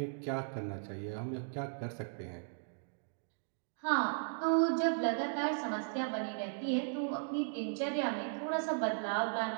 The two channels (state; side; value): silent; left; digital silence